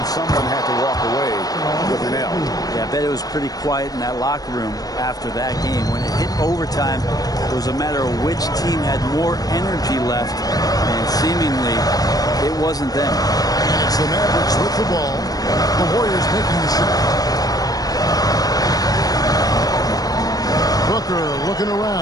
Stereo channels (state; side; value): late; right; 0.18 ms